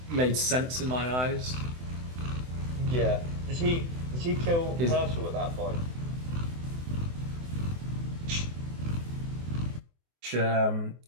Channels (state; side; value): late; left; 24 ms